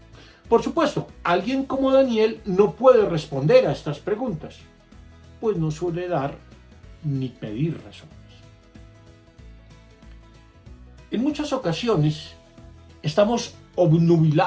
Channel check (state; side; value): identical; both; correlation 1.00